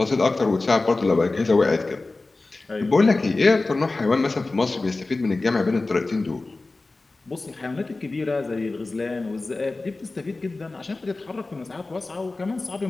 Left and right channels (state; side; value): quieter; right; 3.3 dB